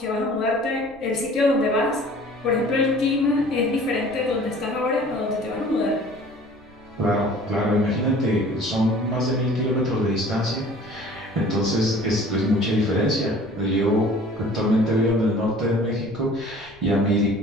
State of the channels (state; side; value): noise; left; rumble, 27 dB below the sound